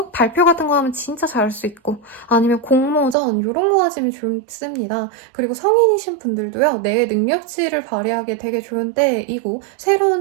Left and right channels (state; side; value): drops out; left; at 3.2 s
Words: 발표 같은 거 하면 진짜 잘할 수 있고, 아니면 공모전 이런 거 하시면 좋습니다. 그리고 성인이신 분들도요, 내 능력치를 발휘하기 되게 좋은 때이고,